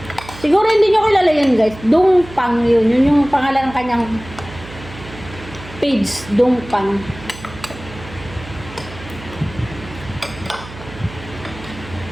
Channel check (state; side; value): noise; right; hum, 16 dB below the sound